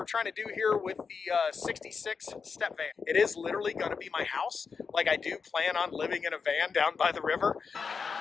trying to do here with the 66 step van. It is literally going to be my house. Like, I do plan on living in a van down by the river.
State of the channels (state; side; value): quieter; right; 5.5 dB